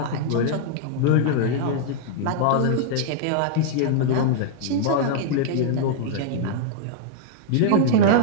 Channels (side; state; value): both; different; correlation -0.01